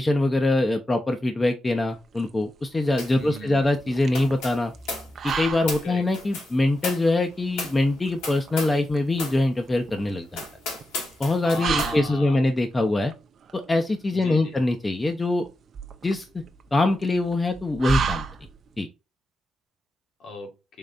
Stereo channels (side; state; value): both; normal; correlation 0.89